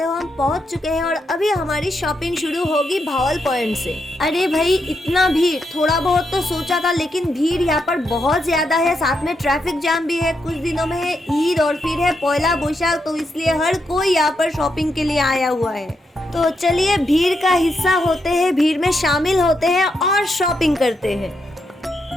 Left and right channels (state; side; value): normal; both; correlation 0.82